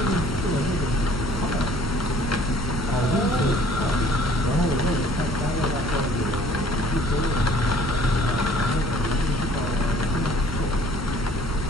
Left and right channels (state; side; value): noise; right; rumble, 7 dB below the sound